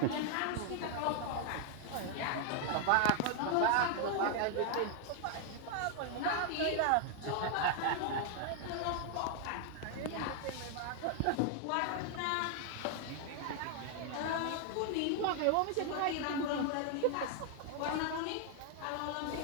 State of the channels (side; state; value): both; different; correlation 0.00